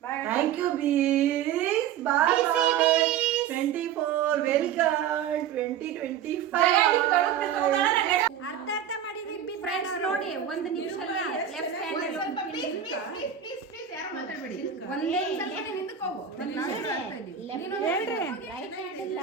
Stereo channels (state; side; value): quieter; left; 8.9 dB